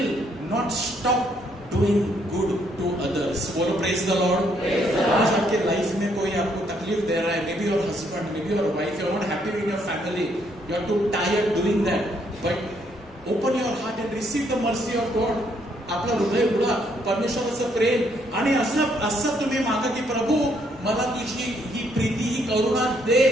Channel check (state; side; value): normal; both; correlation 0.71